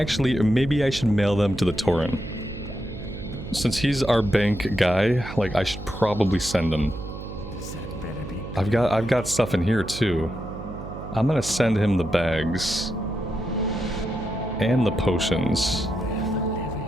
maybe I should mail them to the Tauren. Since he's our bank guy, like, I should probably send him. That better be. I've got stuff in here too. I'm gonna send him the bags and the potions.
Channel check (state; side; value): noise; right; hum, 10 dB below the sound